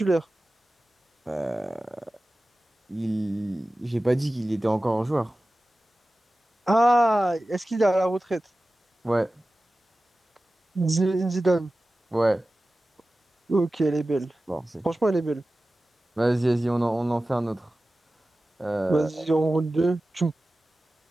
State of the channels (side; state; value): both; normal; correlation 0.96